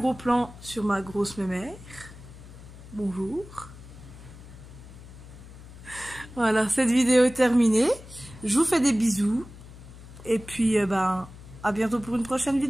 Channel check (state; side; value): noise; left; hum, 17 dB below the sound